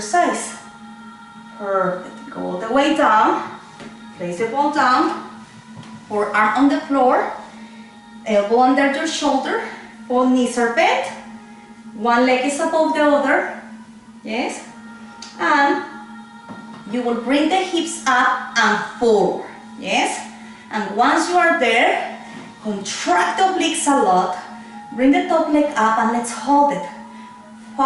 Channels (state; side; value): identical; both; correlation 1.00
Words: Perfect. Go all the way down. Place the ball down. Forearm on the floor. Elbow under your shoulder. Both knees are bent. One leg is above the other. Yes. And you will bring the hips up and forward. Yes. And once you are there, contract the obliques a lot. Bring the top leg up and let's hold it.